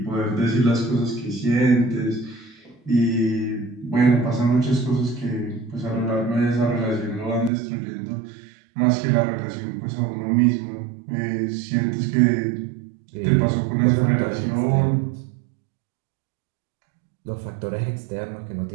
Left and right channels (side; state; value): left; drops out; at 7.5 s